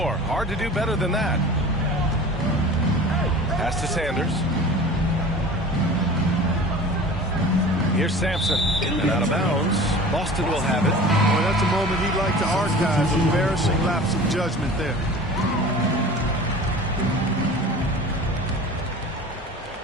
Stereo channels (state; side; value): normal; both; correlation 0.39